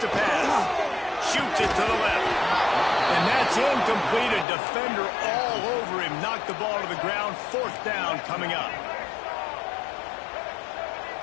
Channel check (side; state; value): right; drops out; at 4.5 s